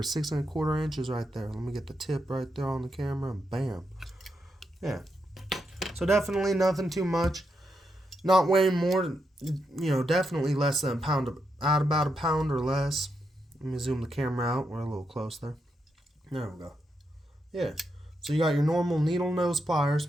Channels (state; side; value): normal; both; correlation 0.83